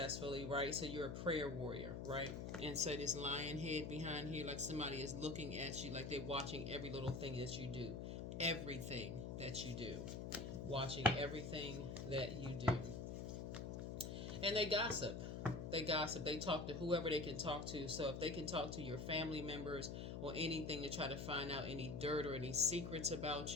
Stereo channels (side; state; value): left; noise; hum, 5 dB below the sound